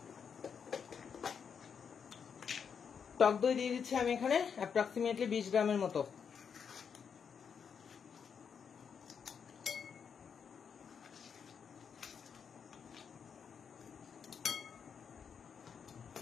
টক দই দিয়ে দিচ্ছি আমি এখানে অ্যাপ্রক্সিমেটলি 20 গ্রামের মতো।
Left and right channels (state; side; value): quieter; right; 6.8 dB